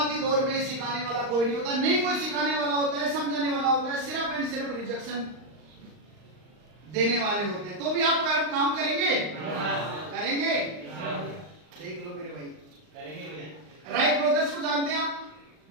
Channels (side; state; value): left; late; 39 ms